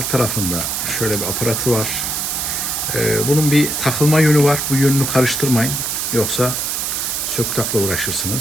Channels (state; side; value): noise; right; hiss, 1 dB below the sound